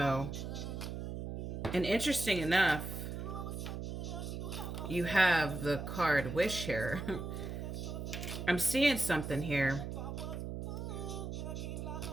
and interesting enough, you have the card Wish here. I'm seeing something here.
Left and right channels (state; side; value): noise; right; hum, 5 dB below the sound